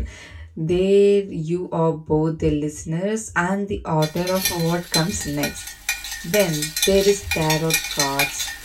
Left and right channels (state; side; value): identical; both; correlation 1.00